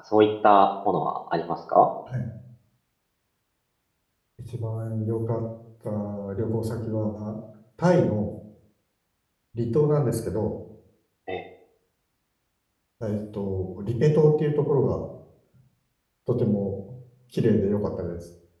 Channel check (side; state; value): both; identical; correlation 1.00